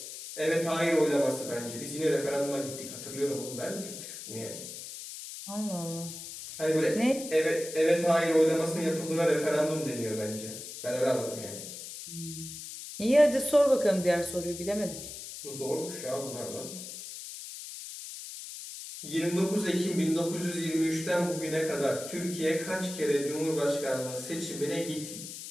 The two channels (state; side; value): noise; left; hiss, 10 dB below the sound